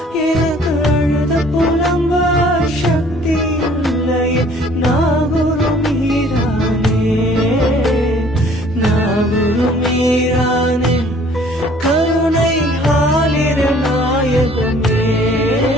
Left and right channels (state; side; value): normal; both; correlation 0.55